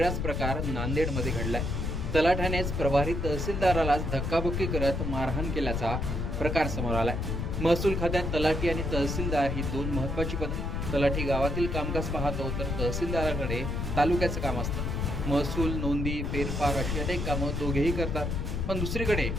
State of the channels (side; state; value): left; noise; rumble, 1 dB below the sound